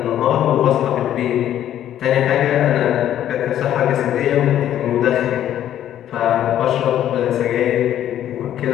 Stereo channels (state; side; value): quieter; right; 11.3 dB